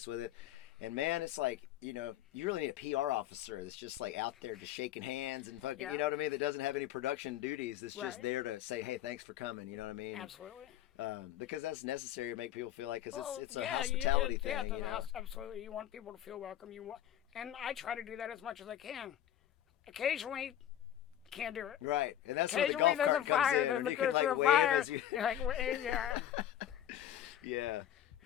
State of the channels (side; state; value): right; quieter; 11.5 dB